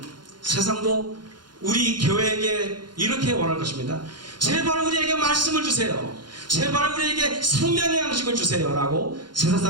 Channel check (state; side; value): late; left; 0.71 ms